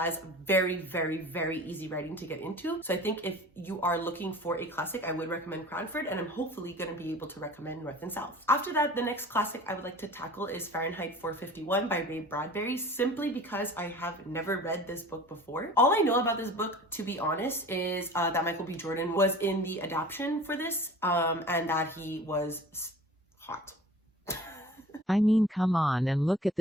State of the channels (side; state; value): both; normal; correlation 0.42